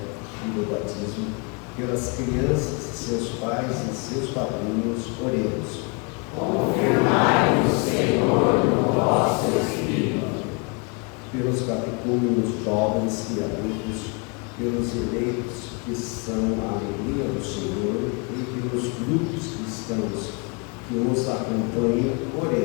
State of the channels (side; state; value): right; quieter; 32.3 dB